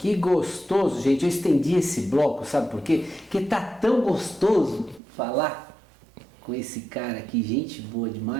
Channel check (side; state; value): left; drops out; at 5.0 s